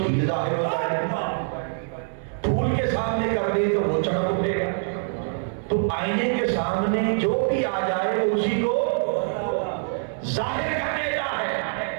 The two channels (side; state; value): left; silent; digital silence